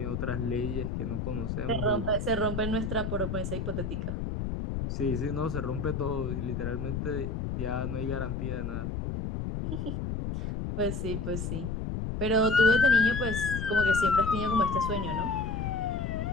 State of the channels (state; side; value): noise; left; rumble, 3 dB below the sound